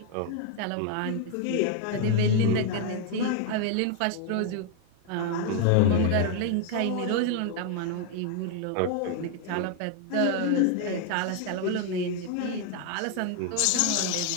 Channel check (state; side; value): different; both; correlation 0.00